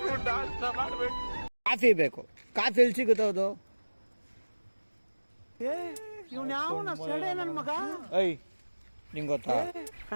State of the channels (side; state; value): both; inverted; correlation -1.00